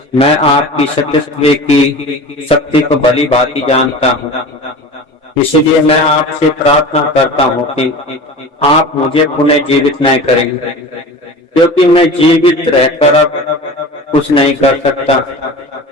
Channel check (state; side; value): normal; both; correlation 0.35